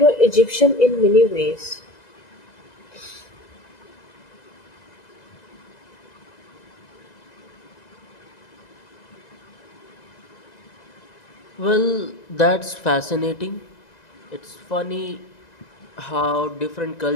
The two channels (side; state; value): right; late; 2.0 ms